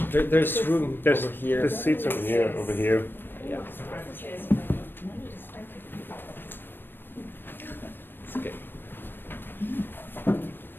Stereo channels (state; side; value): late; right; 0.096 ms